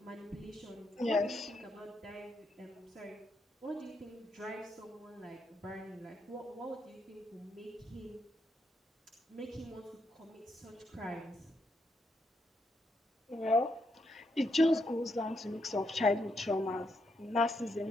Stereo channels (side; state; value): both; normal; correlation 0.79